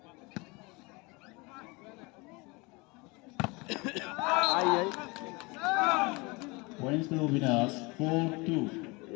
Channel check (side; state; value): right; quieter; 26.4 dB